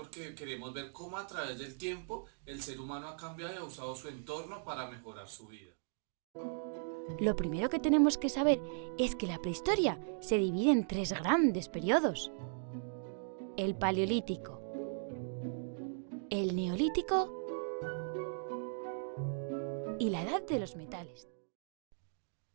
queremos ver cómo a través del tiempo el ser humano ha cambiado y ha usado su entorno para mejorar su vida. Lo primero que tenemos que saber es que la prehistoria se divide en tres grandes periodos: el paleolítico, el neolítico y la edad de los metales.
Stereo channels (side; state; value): left; silent; digital silence